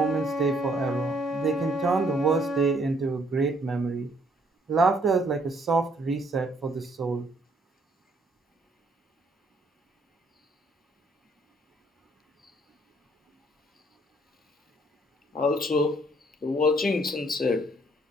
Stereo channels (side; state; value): both; normal; correlation 0.66